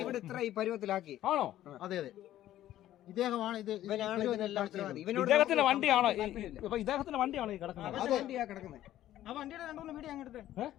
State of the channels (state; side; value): quieter; right; 13.1 dB